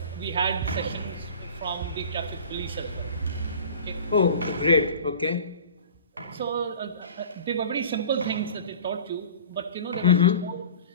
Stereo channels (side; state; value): both; inverted; correlation -0.40